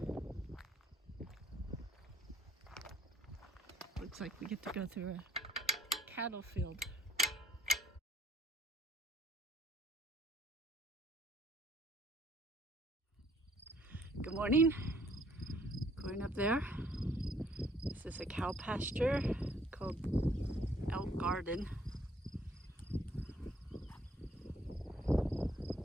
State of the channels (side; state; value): both; normal; correlation 0.62